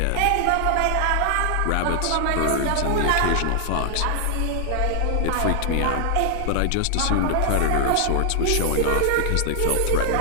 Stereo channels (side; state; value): both; different; correlation 0.00